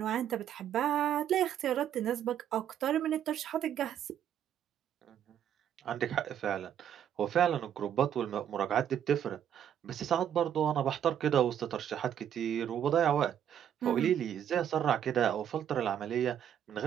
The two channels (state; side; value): quieter; left; 9.7 dB